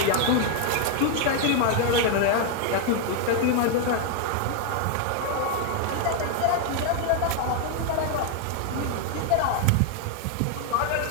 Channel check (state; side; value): different; both; correlation 0.00